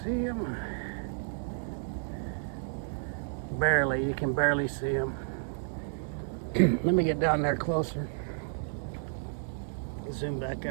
them. Barely, you can barely see them. Let me get down there closer. Zoom back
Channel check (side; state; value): left; silent; digital silence